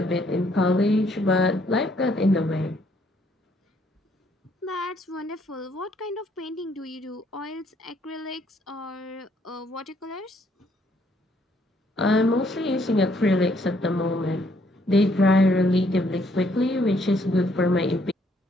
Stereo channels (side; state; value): both; normal; correlation 0.68